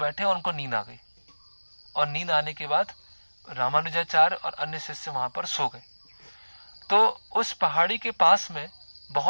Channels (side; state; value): both; inverted; correlation -1.00